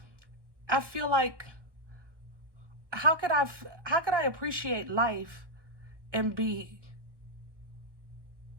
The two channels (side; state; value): left; late; 1.1 ms